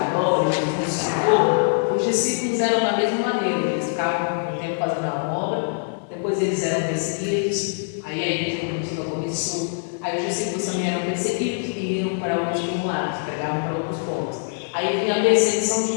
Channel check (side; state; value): right; silent; digital silence